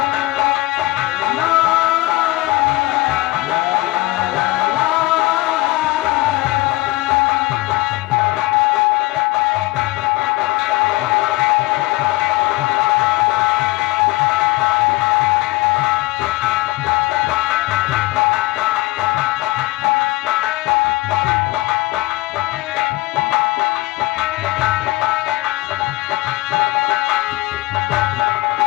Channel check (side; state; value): right; quieter; 19.5 dB